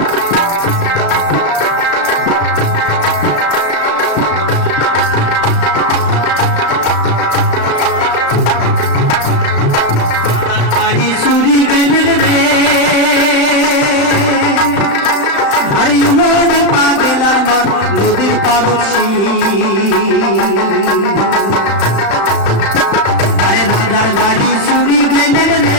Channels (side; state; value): right; late; 35 ms